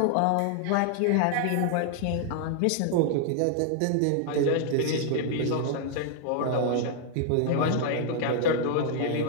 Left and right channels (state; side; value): different; both; correlation 0.00